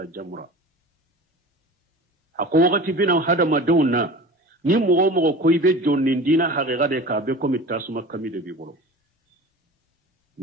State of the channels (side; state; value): both; normal; correlation 0.37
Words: jamra ako wakati bina hada madonna ni mugo ko ibe jonni dina haqiqa de ka be ko mitasuma kamide bi bolo